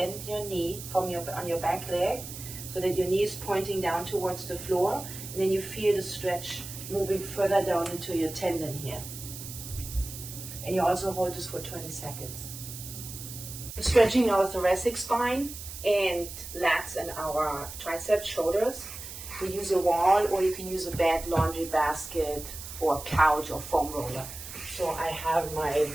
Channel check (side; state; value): right; noise; hiss, 11 dB below the sound